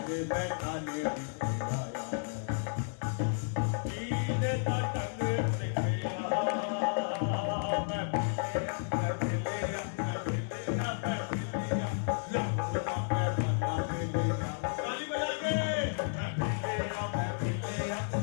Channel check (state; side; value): silent; right; digital silence